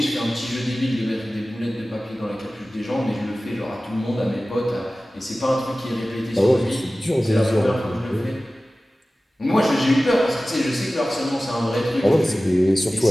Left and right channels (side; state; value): both; normal; correlation 0.96